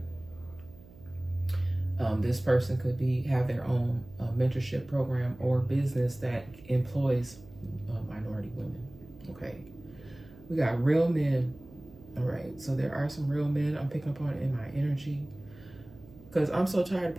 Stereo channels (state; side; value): noise; right; hum, 21 dB below the sound